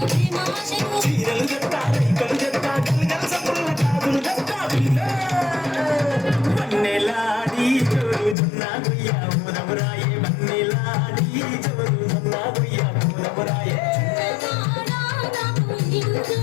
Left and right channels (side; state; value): right; drops out; at 8.3 s